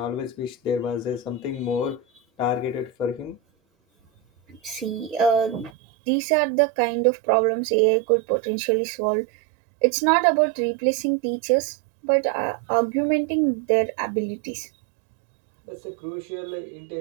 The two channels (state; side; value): drops out; left; at 5.7 s